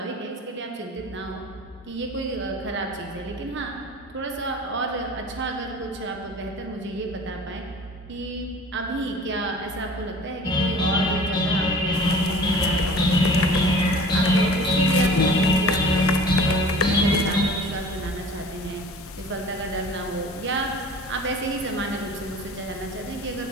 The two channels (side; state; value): both; normal; correlation 0.44